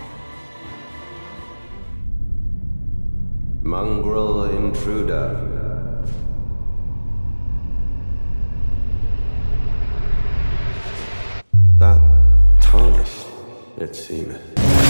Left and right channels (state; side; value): inverted; both; correlation -1.00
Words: Mongrel intruder. That tarnished, it seemeth.